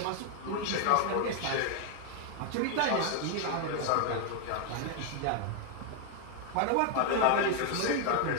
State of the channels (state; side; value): different; both; correlation 0.00